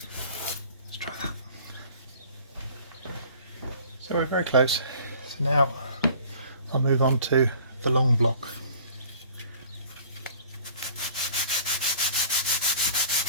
Let's try that. So we're very close. So now I'll move on to the long block.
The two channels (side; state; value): both; inverted; correlation -0.50